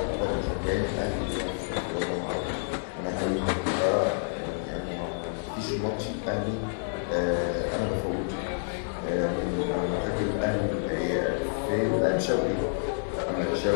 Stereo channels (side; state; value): right; silent; 59 dB below the other